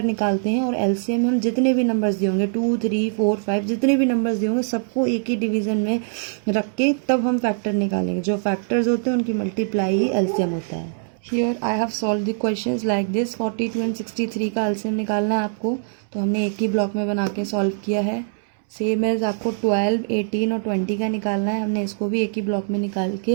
निकालते हैं, और एलसीएम हम जितने भी नंबर्स दिए होंगे 2 3 4 5 जितने भी नंबर्स दिए होंगे सबको एक ही डिवीज़न में रख के तब हम फैक्टर निकालेंगे. जो फैक्टर्स होते हैं उनकी मल्टीप्लाई ही एलसीएम होता है. Here I have solve the questions like this. 42 and 63 का एलसीएम निकालना है आपको, तो हमने एक ही ब्लॉक में बना के सॉल्व किया है. सेम एज आपको 12 18 और 20 का निकालना है, हमने इसको भी एक ही ब्लॉक में निकाल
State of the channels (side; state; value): left; silent; 64 dB below the other